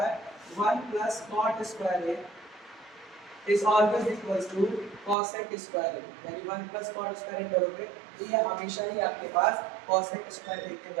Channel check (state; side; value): drops out; left; at 5.2 s